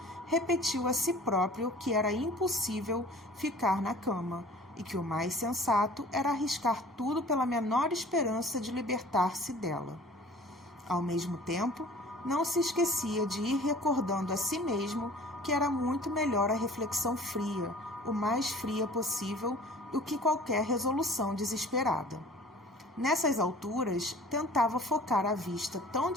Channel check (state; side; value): normal; both; correlation 0.47